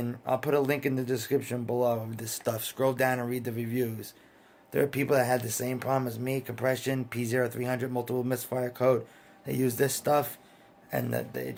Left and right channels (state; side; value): identical; both; correlation 1.00